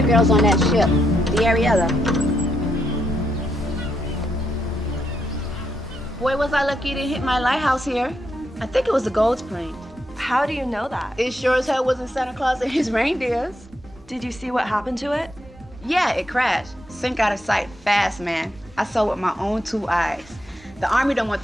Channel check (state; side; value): normal; both; correlation 0.80